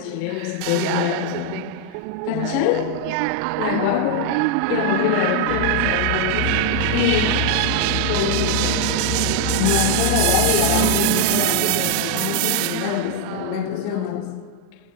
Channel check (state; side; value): different; both; correlation 0.00